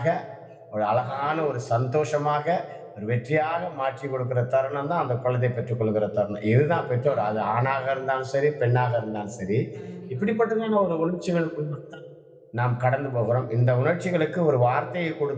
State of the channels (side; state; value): both; identical; correlation 1.00